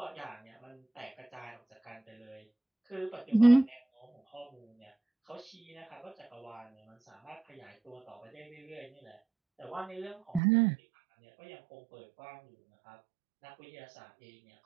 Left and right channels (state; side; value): drops out; left; at 10.4 s